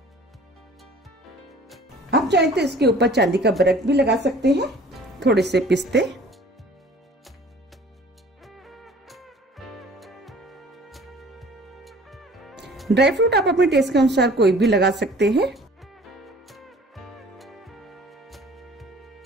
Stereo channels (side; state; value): both; normal; correlation 0.49